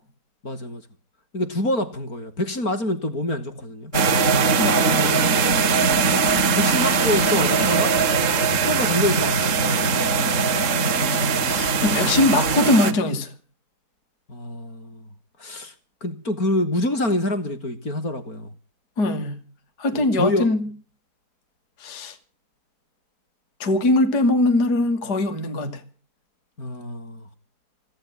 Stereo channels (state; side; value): late; right; 3.8 ms